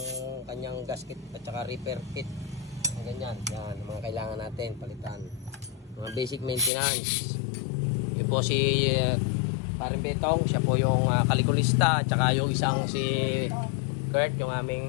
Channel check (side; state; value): right; drops out; at 6.7 s